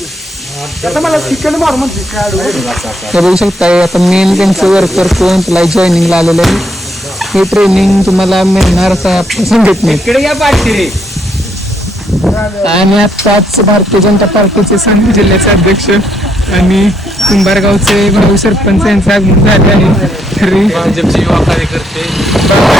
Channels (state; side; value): normal; both; correlation 0.73